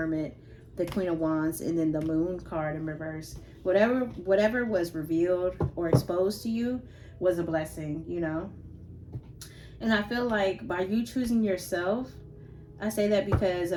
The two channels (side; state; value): both; identical; correlation 1.00